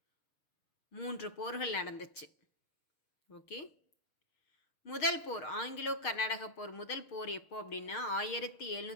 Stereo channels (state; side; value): late; right; 6.5 ms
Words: 3 போர்கள் நடந்துச்சு. ஓகே, முதல் போர் ஆங்கிலோ கர்நாடக போர் முதல் போர் எப்போ அப்படின்னா